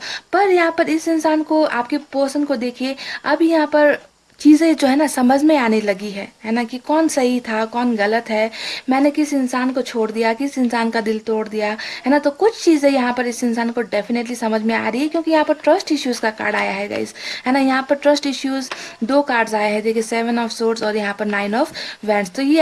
पर यहाँ पर इस इंसान को, आपके पर्सन को देखिए, अब यहाँ पर चीज़ें जो है ना समझ में आने लगी है ना, कि कौन सही था कौन गलत है, मैंने किस इंसान को छोड़ दिया, किस इंसान का दिल तोड़ दिया, है ना। तो कुछ चीज़ें यहाँ पर इस इंसान को डेफिनेटली समझ में आ रही है, क्योंकि यहाँ पर ट्रस्ट इश्यूज़ का कार्ड आया है गाइस, है ना। यहाँ पर ट्रस्ट इश्यूज़ दो कार्ड्स आए हैं, देखिए 7 ऑफ सोर्ड्स और यहाँ पर 9 ऑफ वैंड्स। तो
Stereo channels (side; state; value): both; identical; correlation 1.00